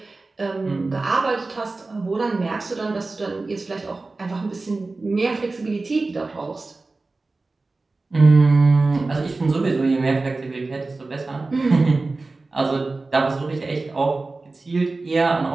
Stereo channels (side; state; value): left; quieter; 3.5 dB